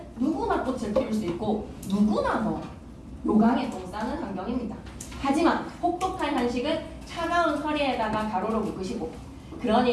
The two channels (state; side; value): identical; both; correlation 1.00